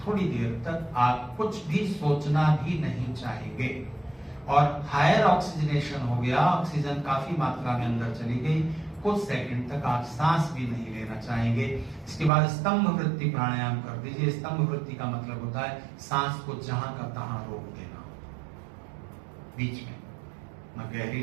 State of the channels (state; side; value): drops out; left; at 12.3 s